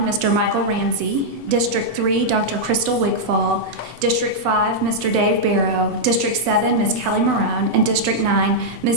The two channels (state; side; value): late; left; 8.0 ms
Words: Mr. Michael Ramsey. District 3, Dr. Crystal Wigfall. District 5, Mr. Dave Barrow. District 7, Ms. Kelly Marone. And District 9,